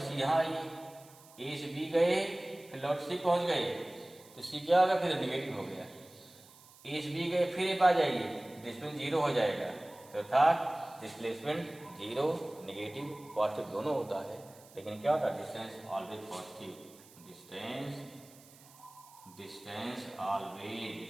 यहाँ आइए, ए से बी गए, फिर लौट सी पहुँच गए, तो सी क्या होगा, फिर नेगेटिव हो गया। ए से बी गए, फिर ए पा जाइए, डिस्प्लेसमेंट जीरो हो जाएगा। तो था डिस्प्लेसमेंट जीरो, नेगेटिव, पॉजिटिव दोनों होता है। लेकिन क्या होता है, distance always positive, distance always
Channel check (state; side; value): noise; right; hiss, 23 dB below the sound